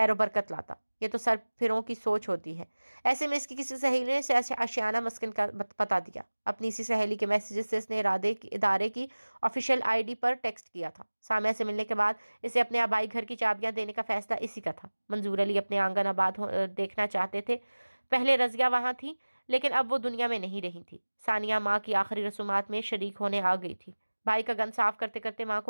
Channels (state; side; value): inverted; both; correlation -1.00